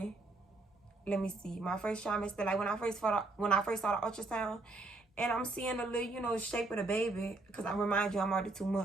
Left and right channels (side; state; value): left; quieter; 3.2 dB